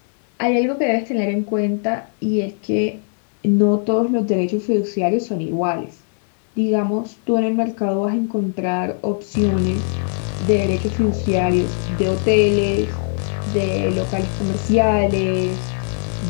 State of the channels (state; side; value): silent; right; 65 dB below the other